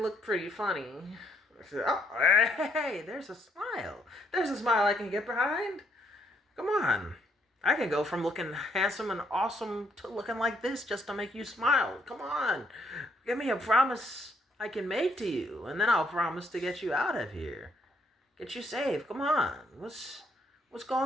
pretty funny. Oh, hey, there's a smile. There's a smile I can get behind. Come on. I can go from looking handsome and awesome to looking like this just to make you smile. Come on. Give me a promise I can make to you, and then I'll promise to get you out of here. Get you safe. Come on. What's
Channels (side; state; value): both; normal; correlation 0.71